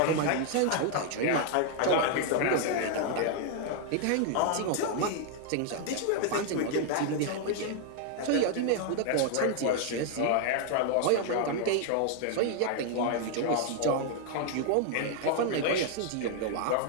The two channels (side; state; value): both; different; correlation 0.00